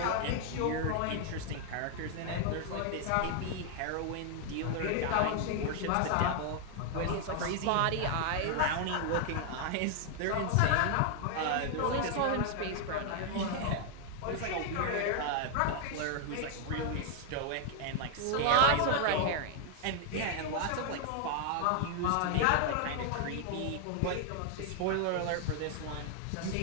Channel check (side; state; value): both; different; correlation 0.00